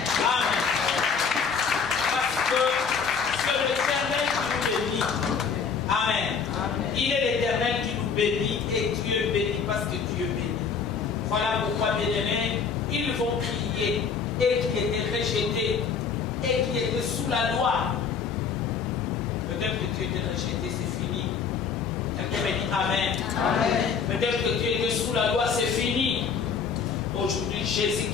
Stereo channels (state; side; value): quieter; right; 6.0 dB